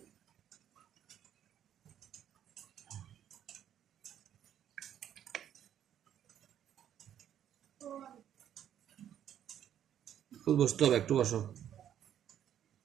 বসতে হবে, একটু বসো।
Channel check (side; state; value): left; quieter; 10.3 dB